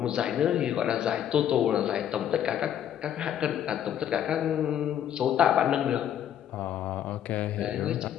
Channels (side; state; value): right; quieter; 10.1 dB